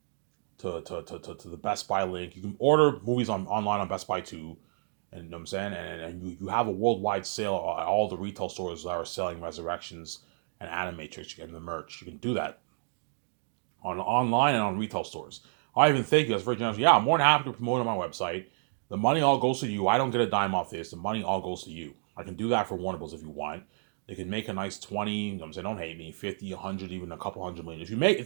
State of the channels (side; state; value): left; silent; digital silence